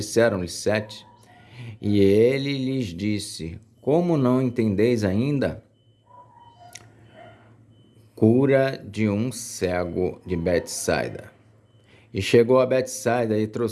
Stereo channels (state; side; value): identical; both; correlation 1.00